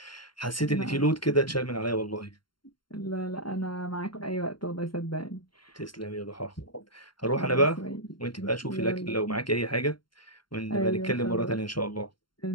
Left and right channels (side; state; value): right; late; 0.72 ms